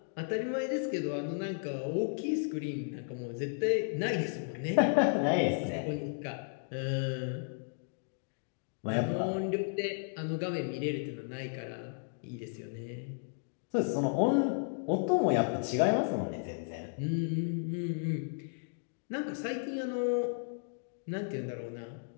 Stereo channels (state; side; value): silent; right; digital silence